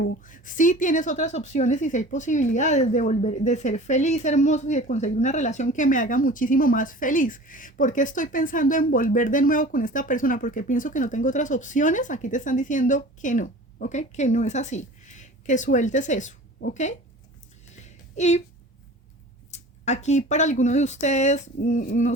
Sí tienes otras opciones y sí hay posibilidades de volver, de ser feliz, hermoso y de conseguir una relación que me haga muchísimo más feliz. ¿Por qué estoy pensando en volver de nuevo con esta persona? Porque pienso que no tengo otras opciones. Aquí te están diciendo que no, ¿ok? Que no es así. Que sueltes eso, ¿ok? Y aquí para alguno de ustedes, no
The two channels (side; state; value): both; normal; correlation 0.41